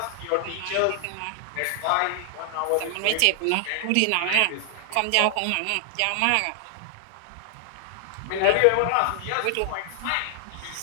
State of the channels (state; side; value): different; both; correlation 0.00